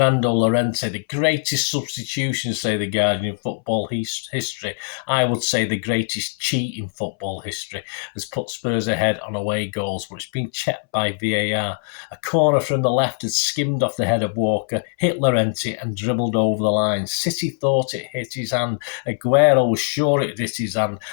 Llorente, the greatest substitution, say the Guardian, in football history. I would say the greatest cheat in football history, has put Spurs ahead on away goals, but it's been checked by VAR. A corner from the left had skimmed off the head of Walker, hit Llorente and dribbled over the line. City thought it hit his hand. Aguero was sure it hit his hand.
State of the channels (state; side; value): silent; right; 64 dB below the other